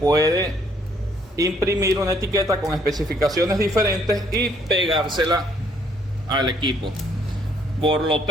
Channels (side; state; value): both; normal; correlation 0.66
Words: imprimir una etiqueta con especificaciones diferentes y pegársela al equipo. Por lo